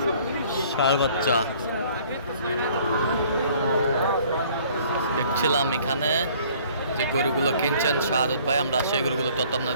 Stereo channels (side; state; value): both; inverted; correlation -0.56